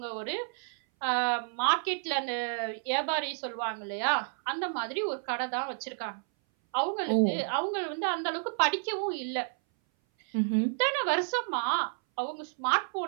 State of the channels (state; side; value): silent; left; 57 dB below the other